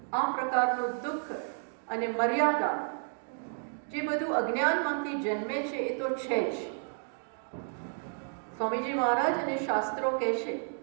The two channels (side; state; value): left; silent; 57 dB below the other